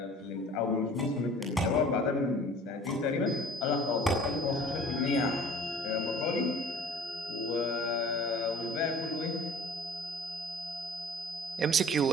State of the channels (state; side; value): normal; both; correlation 0.47